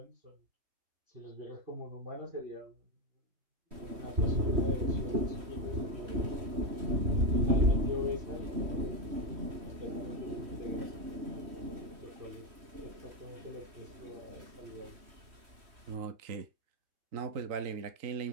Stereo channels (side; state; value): left; late; 3.1 ms